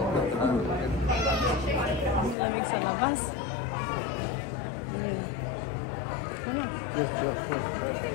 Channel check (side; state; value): right; drops out; at 2.4 s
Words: Lamig sa labas. Ayan. Ano?